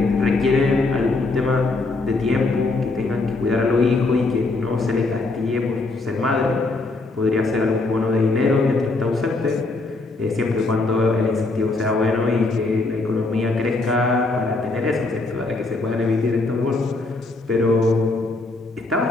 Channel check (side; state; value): right; quieter; 3.3 dB